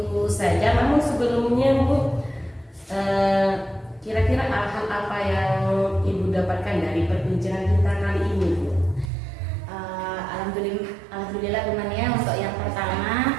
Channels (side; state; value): left; drops out; at 9.1 s